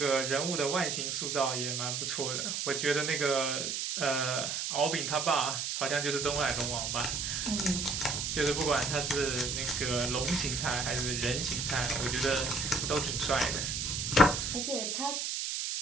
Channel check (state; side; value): noise; right; hiss, 2 dB below the sound